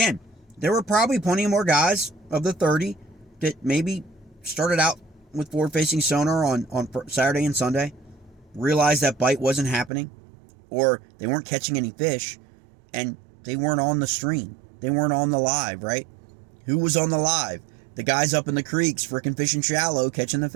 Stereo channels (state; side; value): drops out; left; at 9.9 s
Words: there were probably plenty more guys of the 30 that maybe started out with forward-facing sonar on Saturday and Sunday, realized that bite wasn't happening, or they weren't catching any fish, and they weren't on the stream. They weren't on the live, right? Who was on the live? The guys up in the creeks freaking fishing shallow, catching the